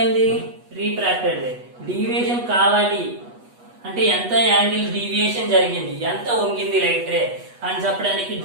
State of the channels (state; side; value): late; left; 8.2 ms